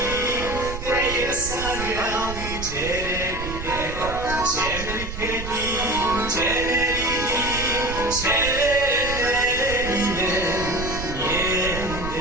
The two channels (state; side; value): noise; right; rumble, 8 dB below the sound